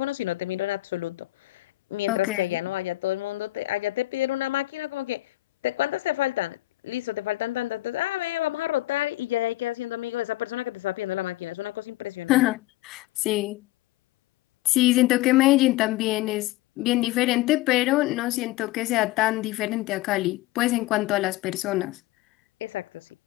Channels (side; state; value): right; quieter; 17.5 dB